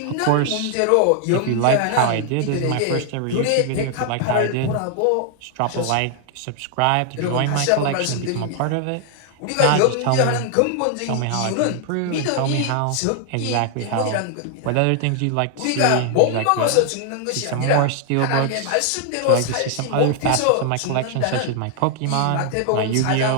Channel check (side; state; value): both; different; correlation 0.00